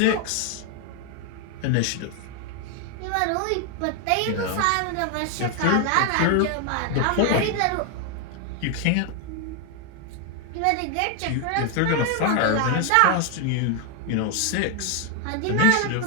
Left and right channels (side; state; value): both; different; correlation 0.01